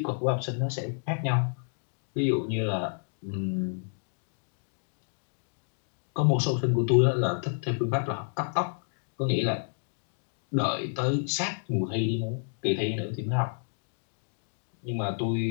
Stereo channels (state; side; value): silent; right; digital silence